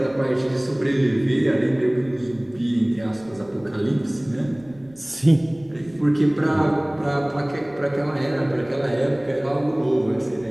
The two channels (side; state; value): right; noise; rumble, 26 dB below the sound